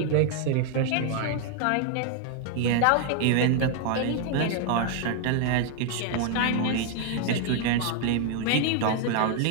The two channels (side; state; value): both; different; correlation 0.00